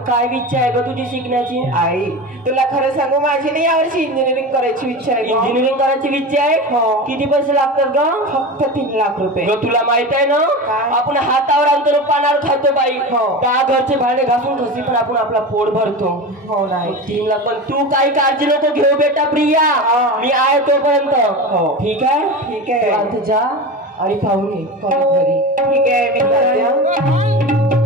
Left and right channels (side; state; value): both; normal; correlation 0.27